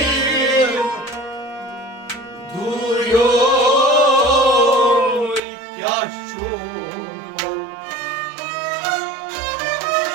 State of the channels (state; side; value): drops out; left; at 5.4 s